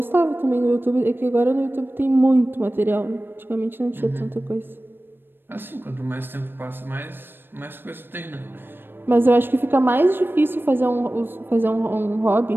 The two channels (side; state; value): left; late; 0.099 ms